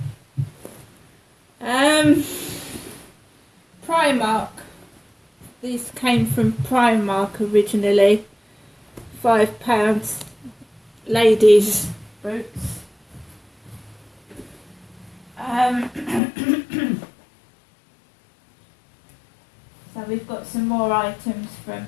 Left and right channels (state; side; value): drops out; right; at 16.2 s